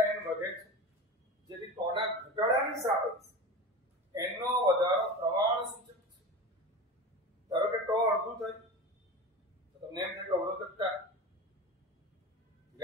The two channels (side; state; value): both; normal; correlation 0.29